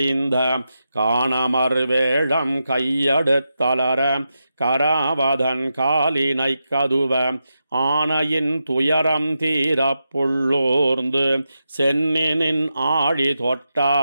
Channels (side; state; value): both; inverted; correlation -0.88